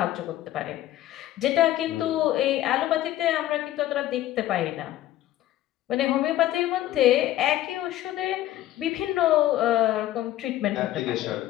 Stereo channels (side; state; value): right; quieter; 14.0 dB